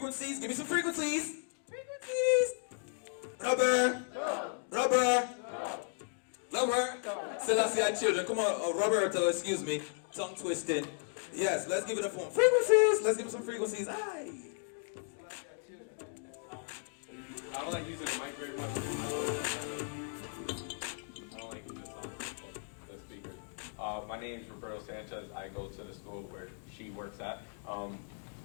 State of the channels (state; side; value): silent; right; 54 dB below the other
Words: Give me some frequencies. Frequencies. Rubber. Rubber. Rubber. Selassie children. Come on, Roberto, excuse me. Tongue twisting. Yes, let's give it a form. Frequencies. Let's give it some frequencies. Aye. I don't like using the mic very much. I don't like using this on the speakers. My name is Roberto Sanchez. I go to the school where she works at.